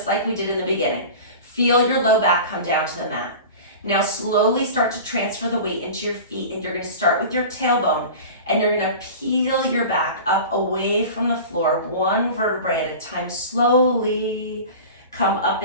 like we did in the beginning. Feel your low back come down to the mat. Now slowly start to transfer the weight into your feet, and you're going to start with your tailbone, and you're going to peel your back up away from the floor, one vertebrae at a time. Slowly come up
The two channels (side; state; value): both; inverted; correlation -0.35